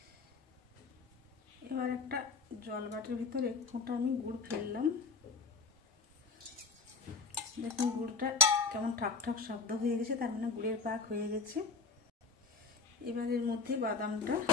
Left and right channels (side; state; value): right; quieter; 4.3 dB